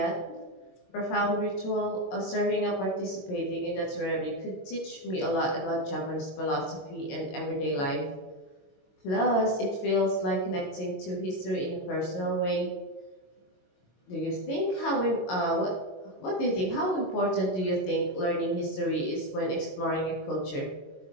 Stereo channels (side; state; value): right; late; 22 ms